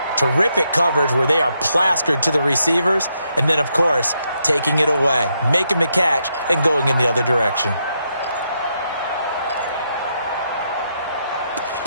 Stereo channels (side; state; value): both; inverted; correlation -0.79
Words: terrific coverage where they are plastered to the receivers, and then, of course, taking it away, making the catch, and going in the other direction.